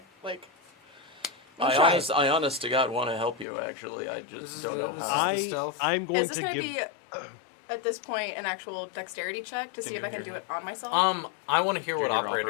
I honest to God want to help you. Actually, I just don't know how. I'm going Is this to gonna give. be at this point an actual dexterity check to see if I can do it on myself? I want to hear what Junior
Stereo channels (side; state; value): right; drops out; at 3.5 s